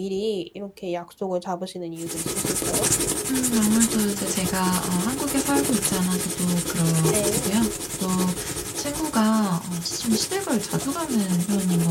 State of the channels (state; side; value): identical; both; correlation 1.00